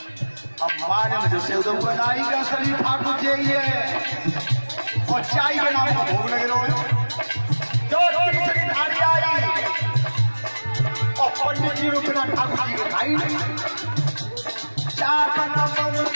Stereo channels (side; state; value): both; inverted; correlation -1.00